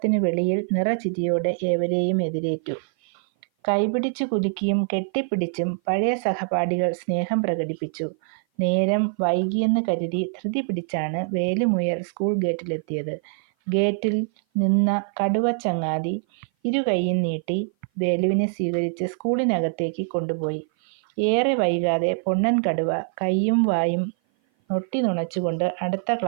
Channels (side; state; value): left; silent; 57 dB below the other